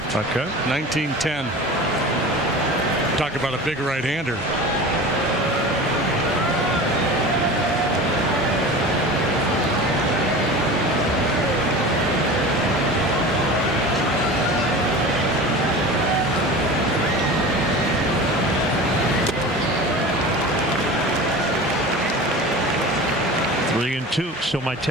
Okay. 1910. Talk about a big right-hander. So my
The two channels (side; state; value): both; normal; correlation 0.34